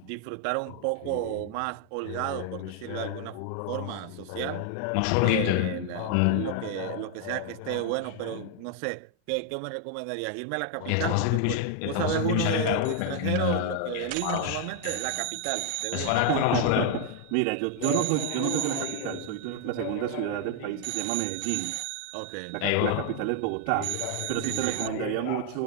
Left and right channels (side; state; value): both; different; correlation 0.00